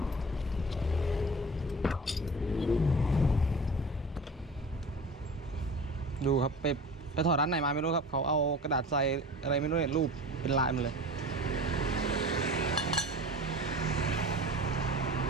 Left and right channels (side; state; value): both; normal; correlation 0.37